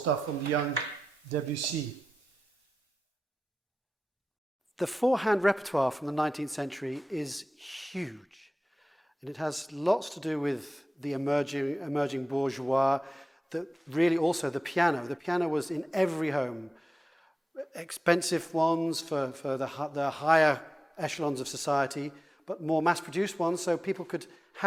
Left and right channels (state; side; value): normal; both; correlation 0.94